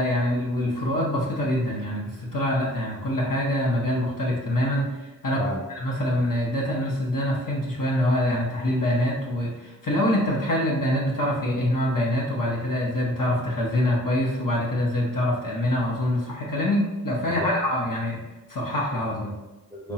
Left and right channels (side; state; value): both; normal; correlation 0.54